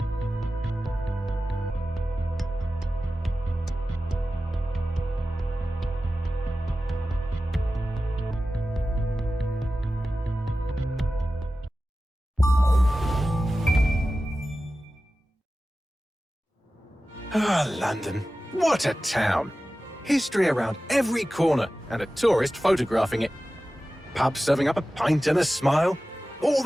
Ah, London. What a town. History around every corner and a tourist photographing it. Pubs serving up a pint and a smile. All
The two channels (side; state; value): both; normal; correlation 0.95